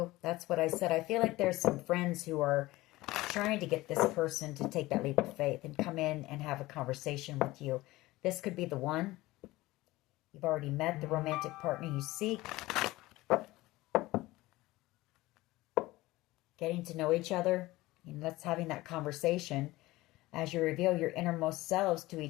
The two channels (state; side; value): quieter; right; 18.8 dB